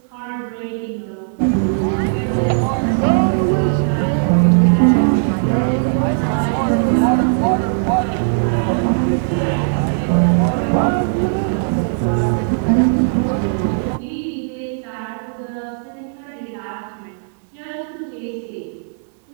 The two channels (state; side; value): silent; left; 67 dB below the other